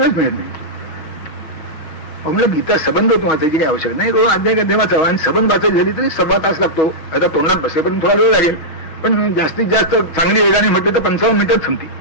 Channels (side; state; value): right; late; 6.3 ms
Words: मिळत नाही. म्हणलं गीता सबंध होतो वाचायची काही आवश्यक नाही, रोज अध्याय वाचावा. आणि सबंध वाचायची झाली तरी 1.25 तास लागतो. आता तोंडात बसेपर्यंत थोडा वेळ लागेल, पण जास्तीत जास्त चांगली वेगाने म्हटली तर 55 मिनिटात संपते.